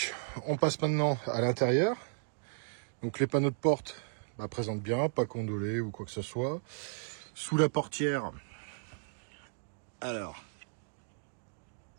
on passe maintenant à l'intérieur. Donc, les panneaux de porte présentent bien, pas condolés ou quoi que ce soit. Sous la portière, alors,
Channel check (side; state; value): left; silent; digital silence